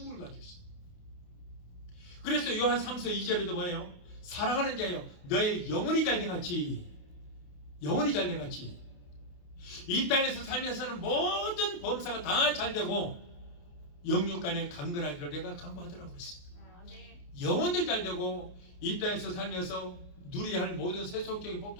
가지고 오시죠. 그래서 요한 3서 2절에도 뭐예요? 사랑하는 자여 너의 영혼이 잘돼같이 영혼이 잘돼같이 이 땅에서 살면서는 모든 범사가 다 잘되고 영육간에 강건하기를 내가 강구하더라고 그랬어요. 영혼이 잘되고 이 땅에서 살면서 누려야 할 모든 세속적인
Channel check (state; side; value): late; right; 28 ms